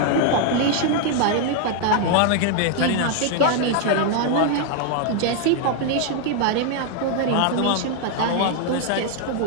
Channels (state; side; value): different; both; correlation 0.00